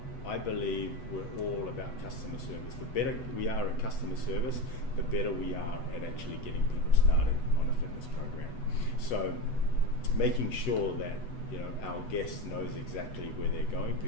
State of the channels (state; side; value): late; right; 8.1 ms